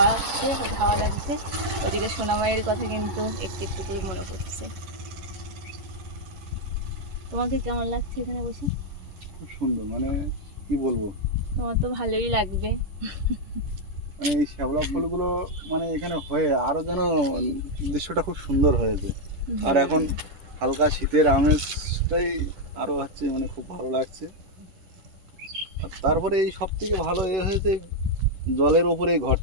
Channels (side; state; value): left; late; 10 ms